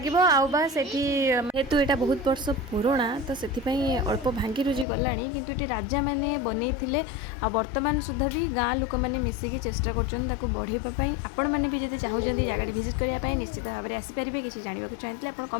आबा से हेतु यहाँ बहुत वर्ष पुराणा तो से अल्प भांगी रुजी गला किंतु ये राजा मैंने बनई आ वर्तमान सुधा भी गाँ लोक मैंने मिसिकी चेष्टा कर बढ़ाई आपण मैंने भी जब चाहूँगी जगह विजिट करने निश्चित भाव में आसीपारे किसी जानवा चाहते आप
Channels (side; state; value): right; drops out; at 4.9 s